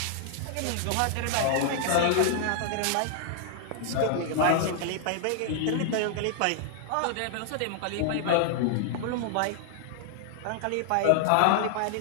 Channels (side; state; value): both; different; correlation -0.01